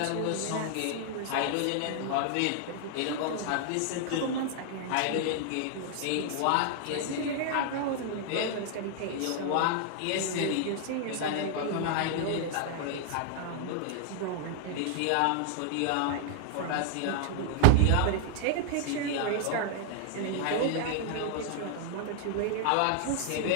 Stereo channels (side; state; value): both; different; correlation 0.00